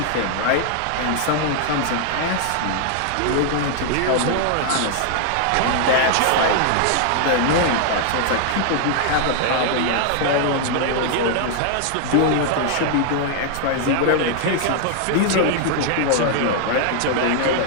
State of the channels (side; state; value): both; different; correlation 0.00